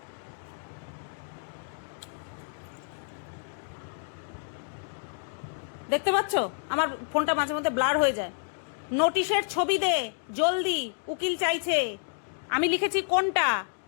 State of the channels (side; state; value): right; silent; digital silence